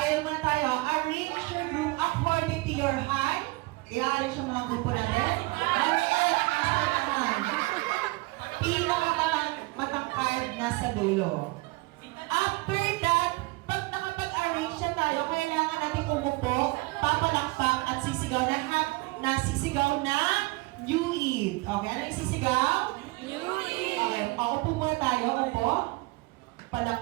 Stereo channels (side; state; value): left; quieter; 23.5 dB